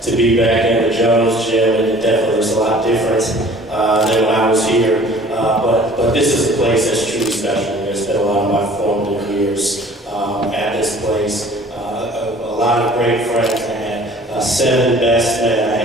be back in the Jones gym, and it definitely looks a lot different than when I was here. But this is a place that's truly special. I spent a lot of my formative years at this place. A lot of great friends. I had 7 best men. I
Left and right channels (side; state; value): both; normal; correlation 0.50